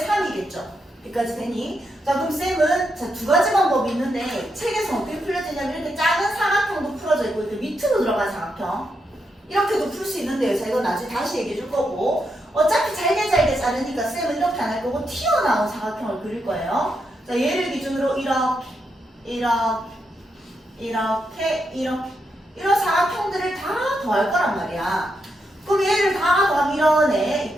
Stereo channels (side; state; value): both; normal; correlation 0.82